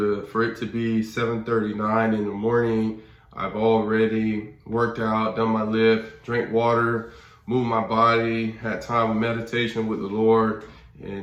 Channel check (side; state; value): both; identical; correlation 1.00